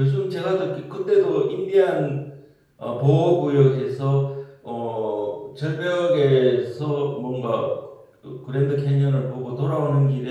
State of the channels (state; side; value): identical; both; correlation 1.00